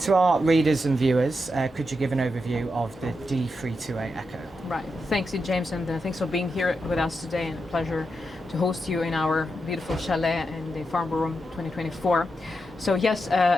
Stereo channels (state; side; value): normal; both; correlation 0.86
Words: to our readers and viewers, could you give an overview of the D328eco? Right. Thanks, James, and thanks for being here with us today, and a pleasure to host you in our beautiful chalet in the Farnborough 2024. So yes,